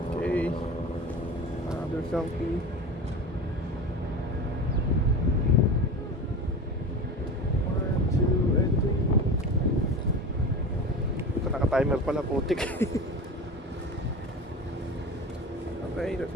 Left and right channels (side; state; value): both; normal; correlation 0.30